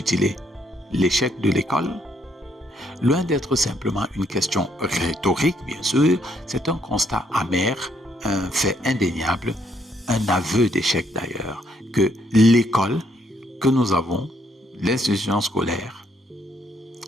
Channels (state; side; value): normal; both; correlation 0.71